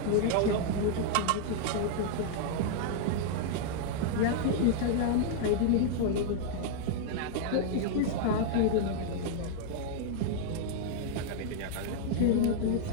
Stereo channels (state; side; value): different; both; correlation -0.01